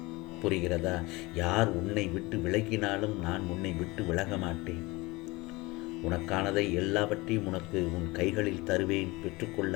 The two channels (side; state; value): right; quieter; 22.8 dB